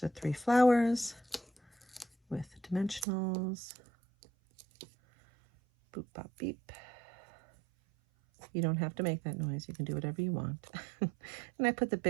the 3 flowers with the dimensionals. Boop, bop, beep. You don't have to make that noise. You can do whatever you want. And I put the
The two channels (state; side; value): drops out; left; at 3.1 s